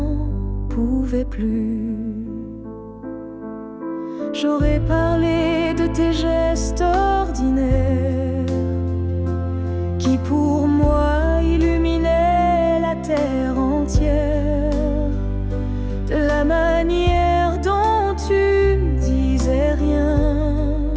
pouvais plus. J'aurais parlé de tes gestes ordinaires qui pour moi illuminaient la terre entière, de la manière dont tu disais rien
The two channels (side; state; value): both; identical; correlation 1.00